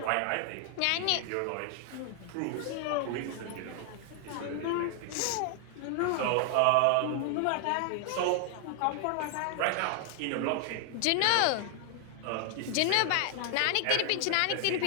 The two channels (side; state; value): both; different; correlation 0.00